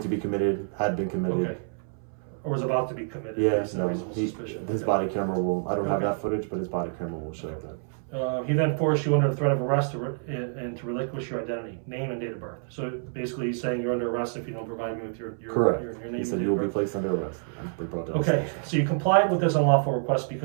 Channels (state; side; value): silent; left; 60 dB below the other